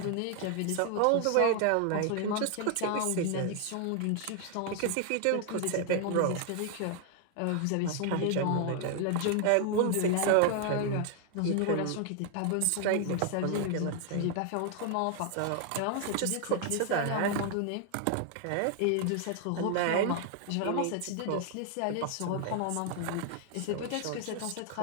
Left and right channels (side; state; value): both; different; correlation 0.00